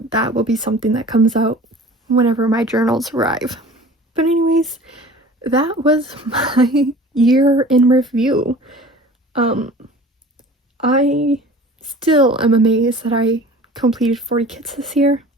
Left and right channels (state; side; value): normal; both; correlation 0.43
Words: will be something that comes out whenever my journals arrive. But anyways, that was my year in review. I still am amazed that I completed 40 kits this year.